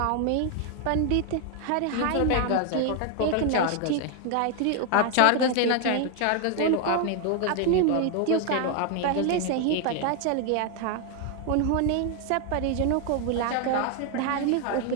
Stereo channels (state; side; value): different; both; correlation 0.00